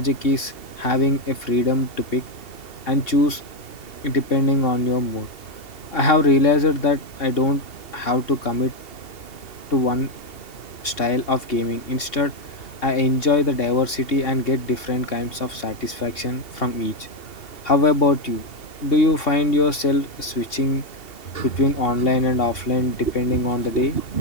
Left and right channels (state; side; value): late; right; 2.7 ms